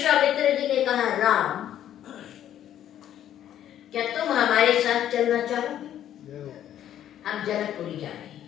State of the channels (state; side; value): quieter; right; 11.1 dB